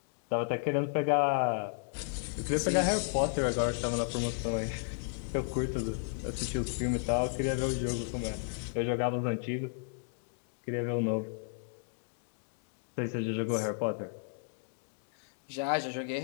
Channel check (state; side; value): silent; right; digital silence